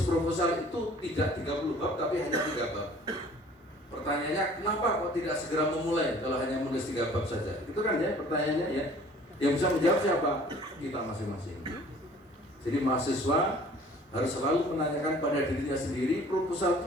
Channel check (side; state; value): both; normal; correlation 0.51